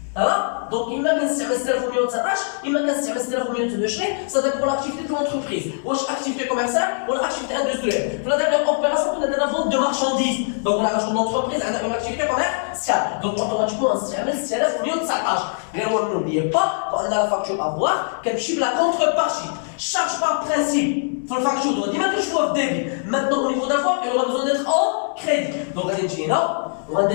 Ça va? Donc, il m'a كنستعمل 6119, il m'a كنستعمل 6122, ça dépend pour l'activité de l'entreprise. واش activité commerciale ou l'activité industrielle. Pour la dernière opération, on a de la vente de marchandises. Donc, là, l'entreprise a une activité commerciale. Donc, automatiquement, on s'amène 6119. Mais n'oubliez pas qu'on a la facture à voir, qu'elle chiffre la contrepartie. Charge par principe. Pour la facture, on doit dire que je vois débit. Maintenant, au niveau d'avoir, il aura besoin d'être en crédit. Donc, on va dire là, on va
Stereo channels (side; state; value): right; silent; 64 dB below the other